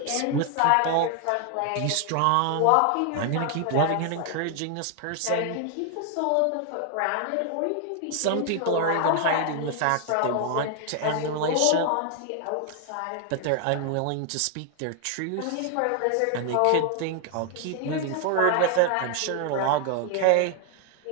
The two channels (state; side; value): different; both; correlation 0.00